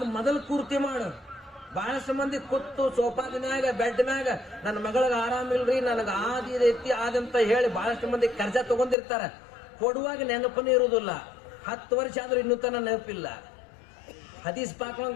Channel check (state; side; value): drops out; right; at 9.0 s